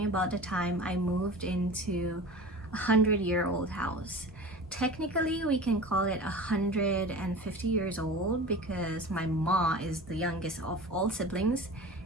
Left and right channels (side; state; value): both; normal; correlation 0.35